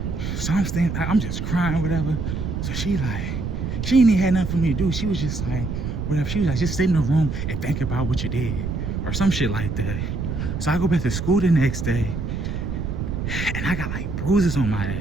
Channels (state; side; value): noise; right; rumble, 3 dB below the sound